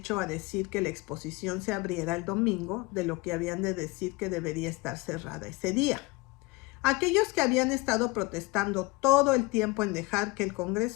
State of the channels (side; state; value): right; quieter; 23.7 dB